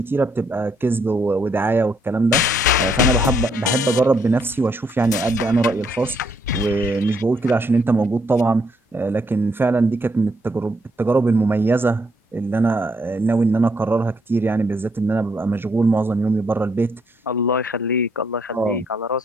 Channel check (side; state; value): both; normal; correlation 0.72